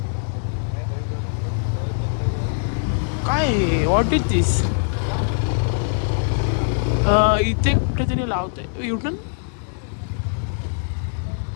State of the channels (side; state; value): right; silent; digital silence